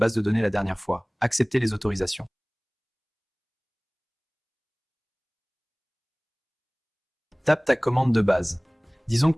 de données la dernière fois. Acceptez les autorisations. Tape ta commande de base. Disons que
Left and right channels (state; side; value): identical; both; correlation 1.00